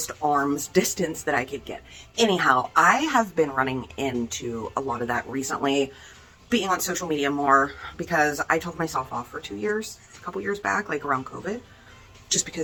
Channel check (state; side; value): identical; both; correlation 1.00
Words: arm's distance that I could get. Anyhow, I have been running into a lot of that recently, being on social media more, because I took myself off for 2 years, a couple years back, like around COVID, just